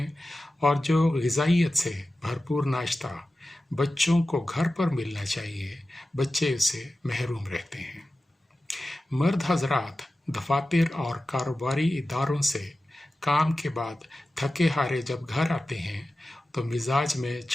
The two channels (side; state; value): both; normal; correlation 0.94